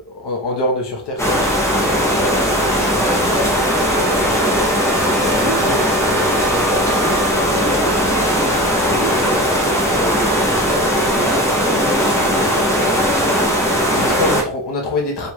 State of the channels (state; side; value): normal; both; correlation 0.31